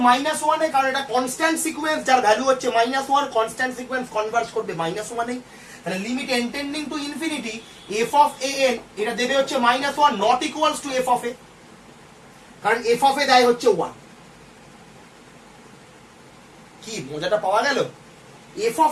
-1 এ, কারণ এটা কনস্ট্যান্ট সিকোয়েন্স যার ভ্যালু হচ্ছে -1, কনস্ট্যান্ট সিকোয়েন্স কনভার্জ করবে -1 এ। তাহলে limit n tending to infinity f of a n এটা দেবে হচ্ছে -1 not equals to f of a, কারণ এফ অফ এ দেয় হচ্ছে 1। কি মজাটা পাওয়া গেল? এফ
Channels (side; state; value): both; identical; correlation 1.00